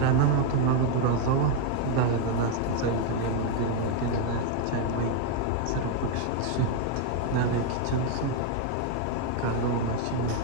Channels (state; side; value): different; both; correlation 0.00